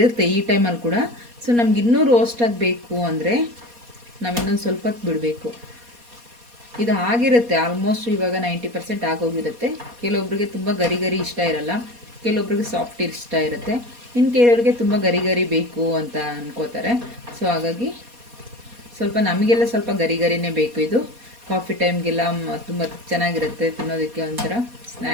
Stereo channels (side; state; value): left; late; 4.2 ms